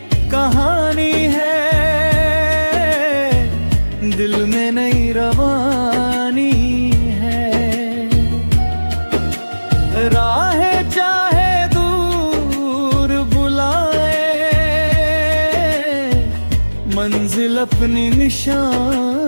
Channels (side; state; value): both; inverted; correlation -1.00